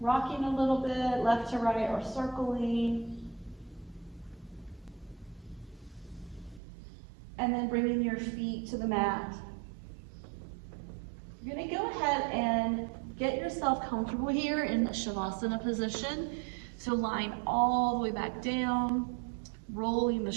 a little bit, left to right or circling. And then bringing your feet to the mat. You're going to go ahead and get yourself comfortable here in the Shavasana position. So lying all the way back down, rolling the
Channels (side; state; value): left; drops out; at 6.6 s